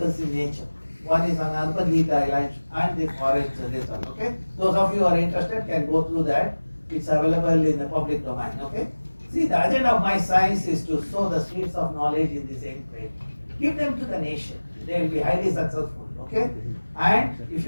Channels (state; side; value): inverted; both; correlation -1.00